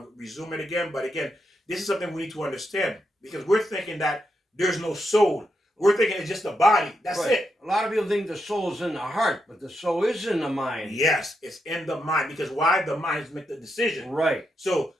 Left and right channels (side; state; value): both; normal; correlation 0.83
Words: to resume it again. But again, this is something we need to understand, because we're thinking that there's no soul. We're thinking it's just the body. That's it. A lot of people think the soul is in the heart, but the soul is in the mind. Yes, it's in the mind. Because why? The minds make the decision. Right. So